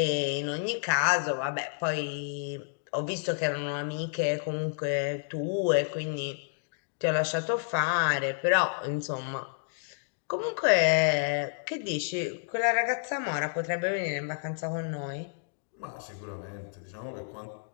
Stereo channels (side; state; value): right; silent; digital silence